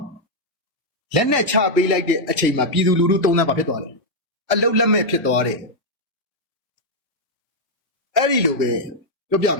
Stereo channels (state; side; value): normal; both; correlation -0.02